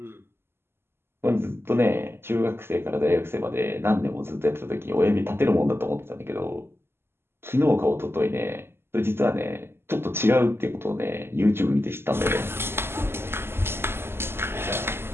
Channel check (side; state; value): left; late; 0.12 ms